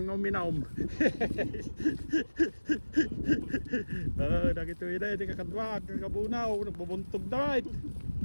minaw. Nakito yun na, di kakadwag, kakabunaw, nagbubuntog na rin.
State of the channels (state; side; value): inverted; both; correlation -1.00